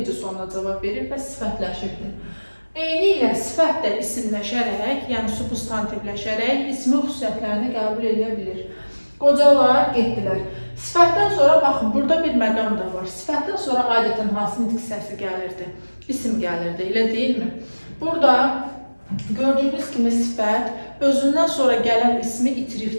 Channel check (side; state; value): both; inverted; correlation -1.00